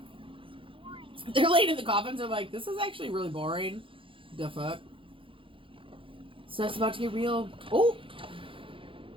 Boring. They're laying in the coffins. They're like, this is actually really boring. The fuck? So that's about to get real. Oh!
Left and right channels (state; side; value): late; left; 0.25 ms